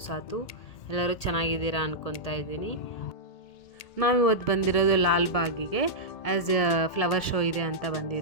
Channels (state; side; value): late; right; 2.2 ms